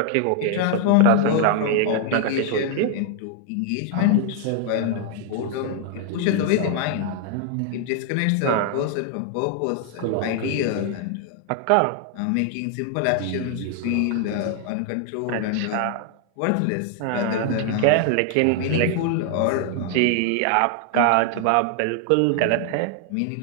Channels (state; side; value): different; both; correlation 0.00